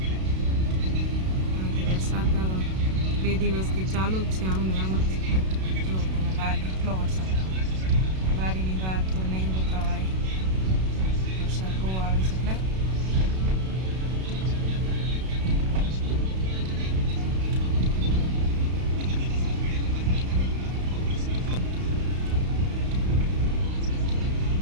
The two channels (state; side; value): late; left; 32 ms